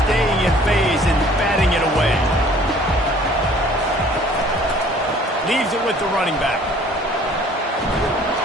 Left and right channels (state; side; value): normal; both; correlation 0.54